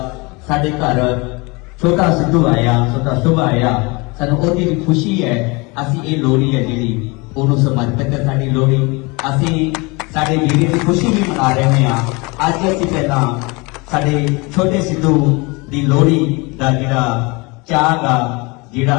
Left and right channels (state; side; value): quieter; right; 27.0 dB